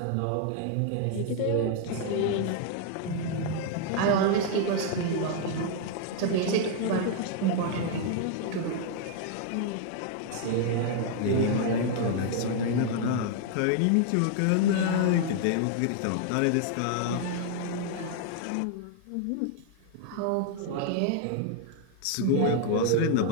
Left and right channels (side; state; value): both; different; correlation 0.00